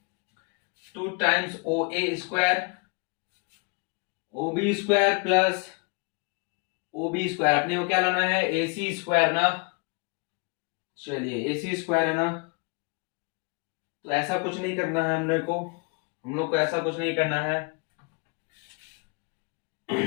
2 times OA square, OB square plus OB square, अपने को क्या लाना है, AC स्क्वायर ना। चलिए AC स्क्वायर है ना, तो ऐसा कुछ नहीं करना है हम लोग को ऐसा कुछ नहीं करना है,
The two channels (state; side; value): quieter; right; 32.7 dB